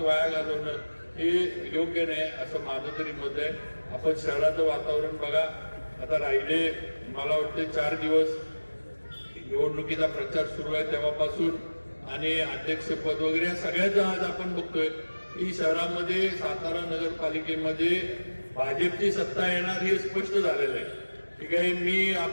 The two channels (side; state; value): both; inverted; correlation -1.00